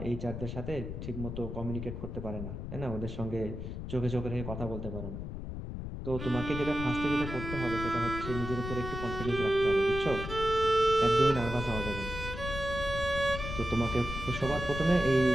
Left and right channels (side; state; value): left; noise; rumble, 7 dB below the sound